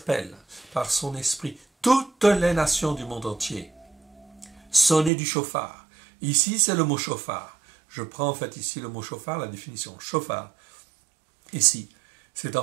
par son esprit toutes les nations du monde entier. Sonner du chauffard. Ici, c'est le mot chauffard. Je prends en fait ici le mot chauffard, la définition. Chauffard. Ici, c'est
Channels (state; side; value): drops out; left; at 5.1 s